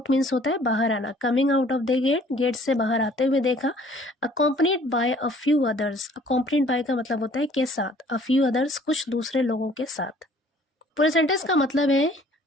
मीन्स होता है बाहर आना. Coming out of the gate से बाहर आते हुए देखा. Accompanied by a few others. Accompanied by का मतलब होता है के साथ. अ फ्यू अदर्स कुछ दूसरे लोगों के साथ. पूरे सेंटेंस का मतलब है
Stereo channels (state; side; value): normal; both; correlation 0.56